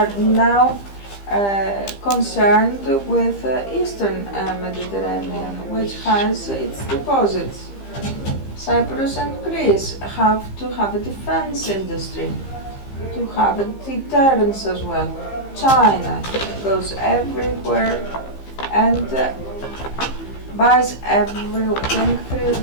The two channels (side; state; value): right; late; 15 ms